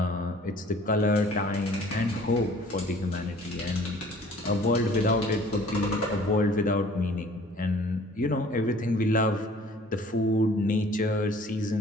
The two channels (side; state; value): both; normal; correlation 0.53